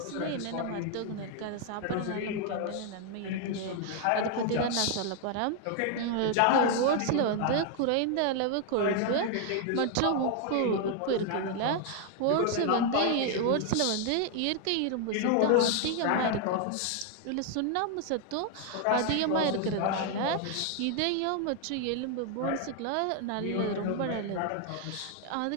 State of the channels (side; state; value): both; different; correlation 0.00